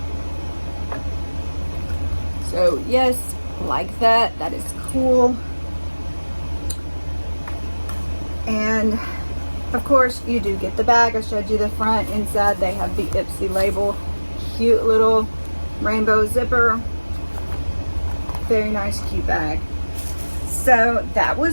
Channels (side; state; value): both; inverted; correlation -1.00